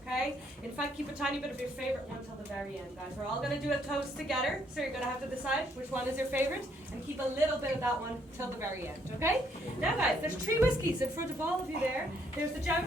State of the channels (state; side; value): normal; both; correlation 0.69